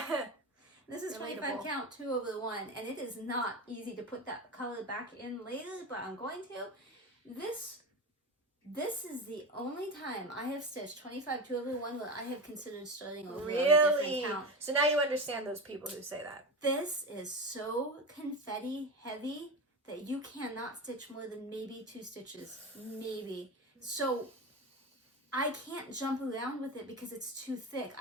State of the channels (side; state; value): both; normal; correlation 0.24